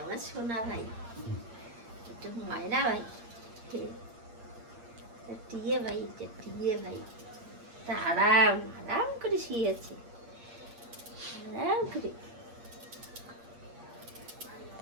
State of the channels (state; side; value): late; left; 8.6 ms